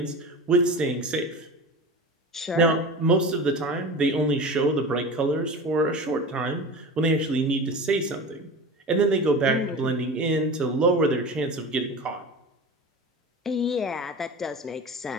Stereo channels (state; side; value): normal; both; correlation 0.31